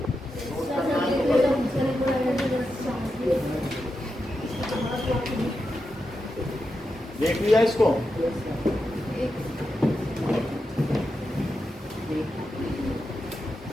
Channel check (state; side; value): normal; both; correlation 0.88